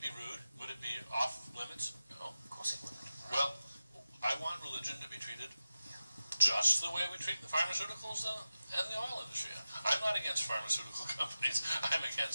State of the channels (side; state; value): both; inverted; correlation -0.94